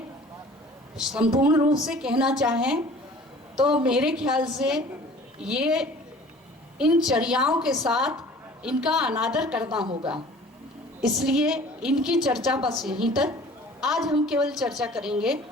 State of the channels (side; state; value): both; normal; correlation 0.47